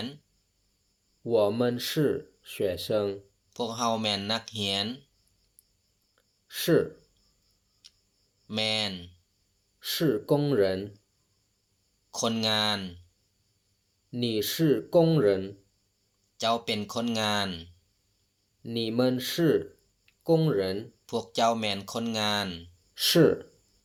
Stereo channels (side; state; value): both; identical; correlation 1.00